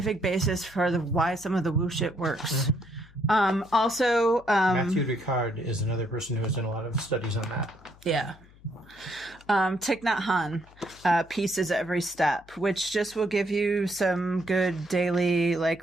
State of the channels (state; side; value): noise; left; hum, 25 dB below the sound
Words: basis for why some of the woo shit works. Also, Matthew Ricard is another person who has done a lot of studies on that. Yeah. Thich Nhat Hanh, Pieces Every Step, which just will give you some good daily,